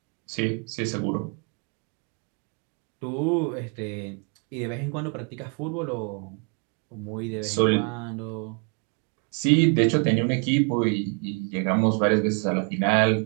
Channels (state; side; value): quieter; left; 35.8 dB